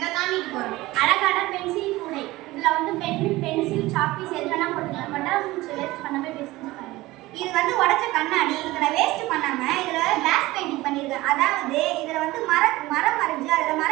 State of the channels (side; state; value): left; quieter; 18.9 dB